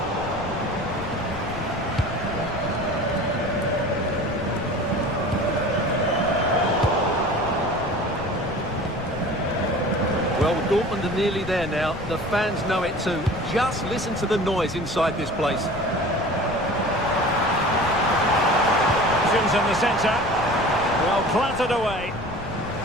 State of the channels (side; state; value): left; noise; rumble, 12 dB below the sound